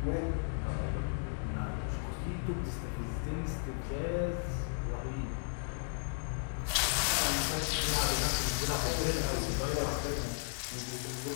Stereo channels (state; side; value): silent; right; digital silence